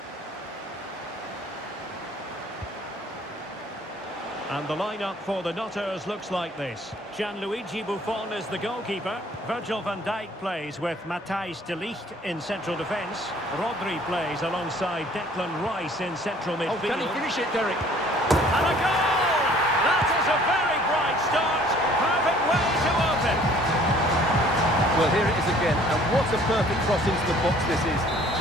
And the lineup for the Nutters looks like this. Gianluigi Buffon is the goalkeeper. Virgil van Dijk plays with Matthijs de Ligt in central defence. Rodri plays alongside Declan Rice in central midfield. Oh, can he finish it, Derek? And a goal! That is a very bright start. Perfect way to open. Well, here it is again, and what a perfect cross into the box this is.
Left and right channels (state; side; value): normal; both; correlation 0.55